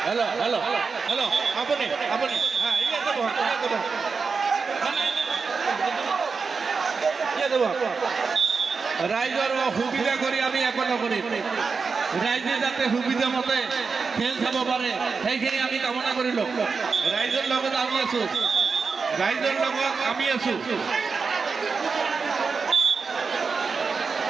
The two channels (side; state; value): left; quieter; 5.0 dB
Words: हेलो हेलो हेलो अपने अपने हाँ ये देबो ये देबो राइजर सुविधा करी आमी एकता करी राइजे जाते सुविधा मते खेल चाब पारे সেইখিনি আমি কামনা কৰিলো। ৰাইজৰ লগত আমি আছো, ৰাইজৰ লগত আমি আছো।